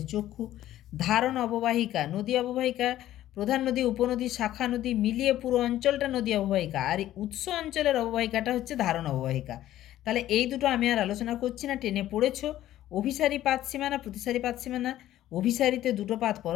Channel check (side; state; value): right; quieter; 13.4 dB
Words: চক্ষু। ধারণ অববাহিকা, নদী অববাহিকা, প্রধান নদী, উপনদী, শাখা নদী মিলিয়ে পুরো অঞ্চলটা নদী অববাহিকা, আর উৎস অঞ্চলের অববাহিকাটা হচ্ছে ধারণ অববাহিকা। তাহলে এই দুটো আমি আর আলোচনা করছি না, টেনে পড়েছো। অভিসারী পাতসীমানা, প্রতিসারী পাতসীমানা। অভিসারীতে 2টো পাত